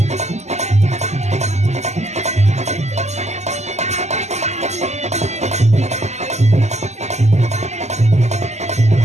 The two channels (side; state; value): left; late; 0.33 ms